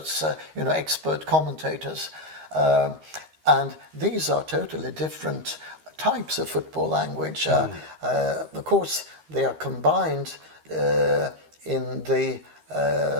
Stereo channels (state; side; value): late; left; 13 ms